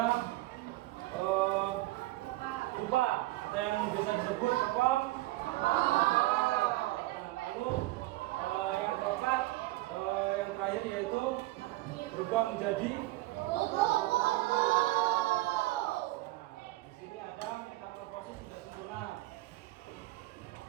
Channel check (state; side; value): quieter; left; 18.5 dB